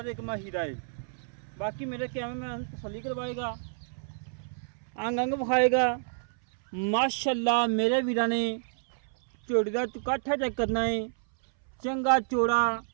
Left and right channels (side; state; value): left; silent; 58 dB below the other